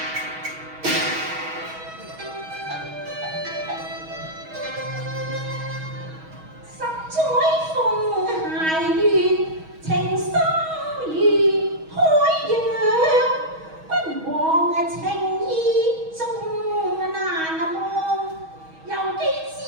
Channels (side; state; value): left; late; 6.3 ms